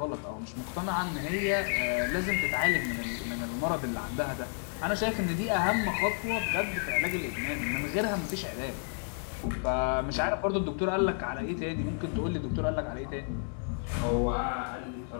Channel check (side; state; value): right; silent; 57 dB below the other